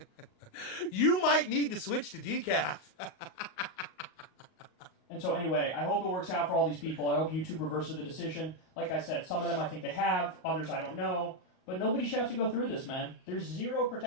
You might need to switch to decaf. And so anyway, I hope it works out for all these people. I hope YouTube reverses the decision. Like I said, some of them I think they have, others I don't know. But nobody should have to go through this, man. There's zero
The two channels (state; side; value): late; right; 38 ms